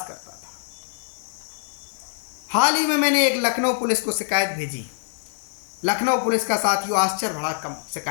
करता था। हाल ही में मैंने एक लखनऊ पुलिस को शिकायत भेजी। लखनऊ पुलिस का साथियों आश्चर्य भरा कम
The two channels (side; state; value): right; silent; digital silence